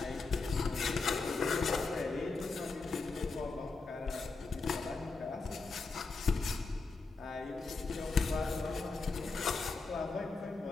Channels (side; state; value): right; quieter; 4.0 dB